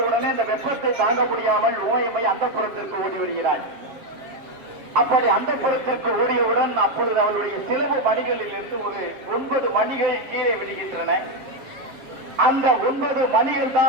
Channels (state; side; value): late; left; 7.5 ms